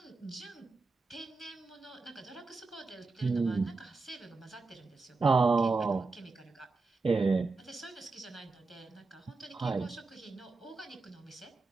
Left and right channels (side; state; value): left; quieter; 3.9 dB